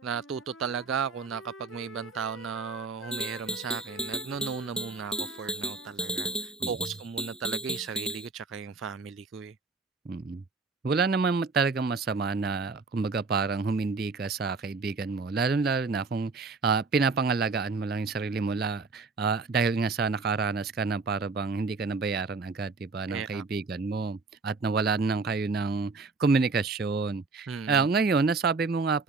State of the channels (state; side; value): quieter; left; 4.1 dB